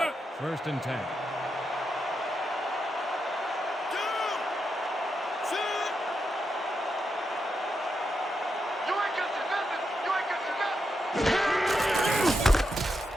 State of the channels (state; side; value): normal; both; correlation 0.85